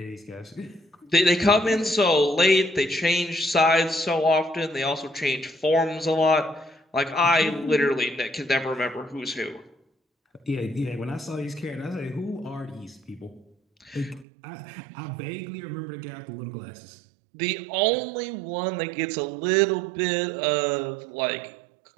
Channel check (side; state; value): left; drops out; at 14.2 s